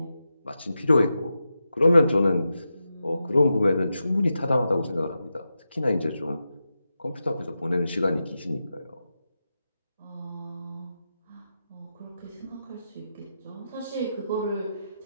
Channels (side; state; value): both; inverted; correlation -0.89